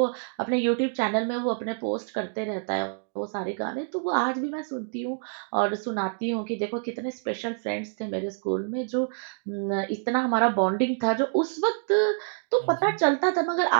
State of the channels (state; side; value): silent; left; digital silence